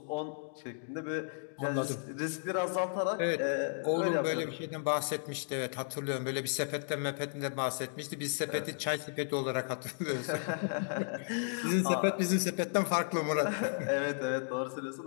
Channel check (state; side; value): silent; right; digital silence